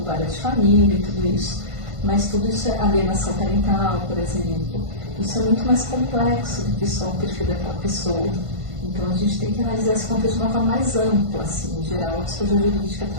várias de família e tudo isso. Mas tudo isso é alienação parental, por exemplo. Isso é muito mais complexo do que só o perfil daquela pessoa. Então, a gente tem que analisar esse contexto de uma forma mais ampla, assim, em geral, a psicologia jurídica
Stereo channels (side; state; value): left; late; 1.5 ms